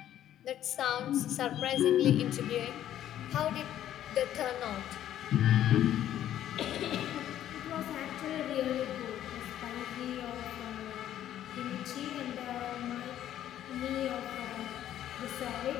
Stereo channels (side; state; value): right; quieter; 11.6 dB